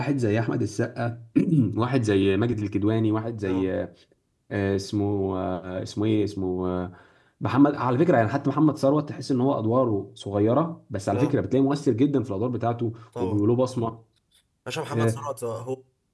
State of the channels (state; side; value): identical; both; correlation 1.00